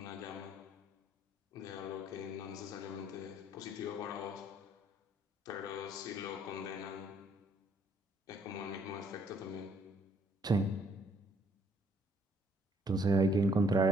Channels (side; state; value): both; normal; correlation 0.65